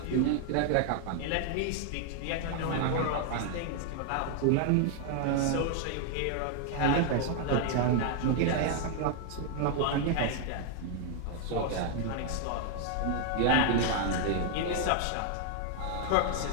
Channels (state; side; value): different; both; correlation 0.00